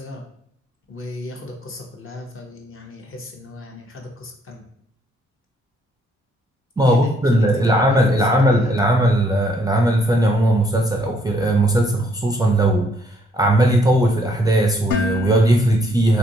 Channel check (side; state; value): both; normal; correlation 0.68